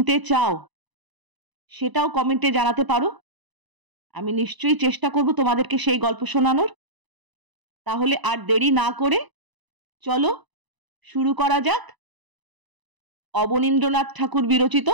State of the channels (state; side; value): late; left; 1.0 ms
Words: চাও সেটাও কমেন্টে জানাতে পারো। আমি নিশ্চয়ই চেষ্টা করব তোমাদেরকে সেই গল্প শোনানোর। তাহলে আর দেরি না করে চলো শুরু করা যাক অবনীন্দ্রনাথ ঠাকুর বিরচিত